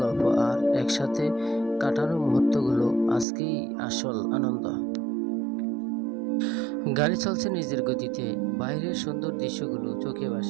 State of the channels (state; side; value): drops out; left; at 3.2 s